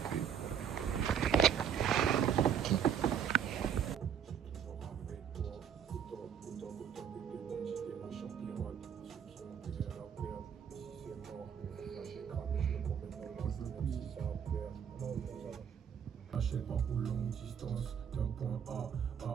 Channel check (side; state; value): left; quieter; 8.1 dB